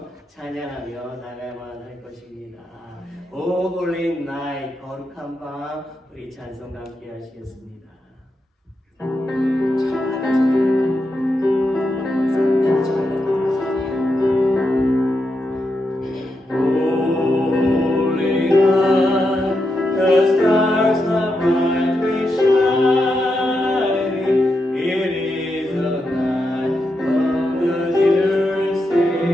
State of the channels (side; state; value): both; normal; correlation 0.85